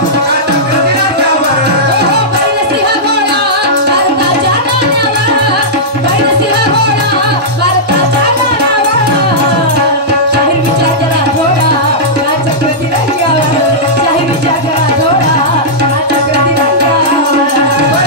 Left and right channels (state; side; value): normal; both; correlation -0.12